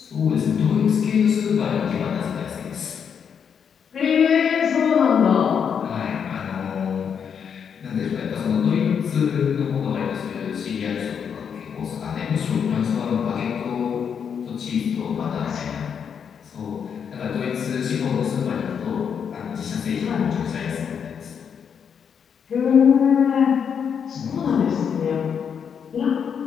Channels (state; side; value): quieter; right; 7.3 dB